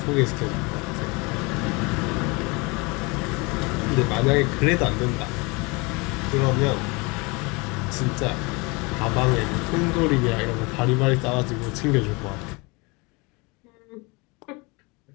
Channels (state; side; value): quieter; right; 27.3 dB